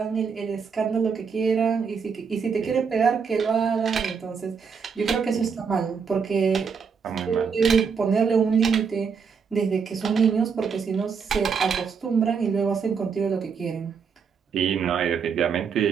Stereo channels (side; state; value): left; quieter; 6.0 dB